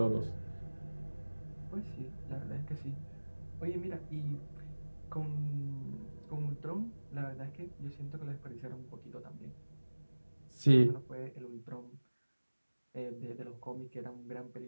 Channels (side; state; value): both; inverted; correlation -1.00